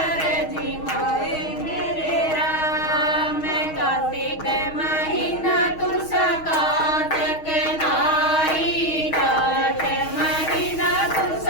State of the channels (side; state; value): right; late; 6.4 ms